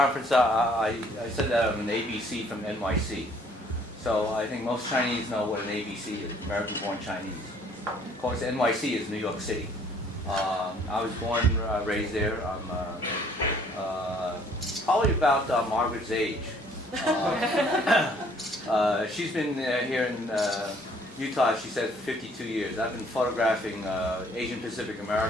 I said that I'm an ABC from NYC. So I think most Chinese know what an ABC is, American-born Chinese. Of course, NYC is New York City. I was born, raised there. I'm probably about Margaret's age. She's been here in Utah, she said, for 52 years. I've been photographing Asian Pacific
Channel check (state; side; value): normal; both; correlation 0.60